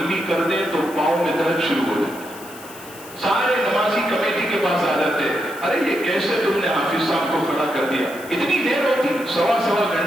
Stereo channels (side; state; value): left; noise; hiss, 18 dB below the sound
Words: کر دیں تو پاؤں میں درد شروع ہو جائے، سارے نمازی کمیٹی کے پاس آ جاتے ہیں، ارے یہ کیسے تم نے حافظ صاحب کو کھڑا کر دیا؟ اتنی دیر ہوتی، سوا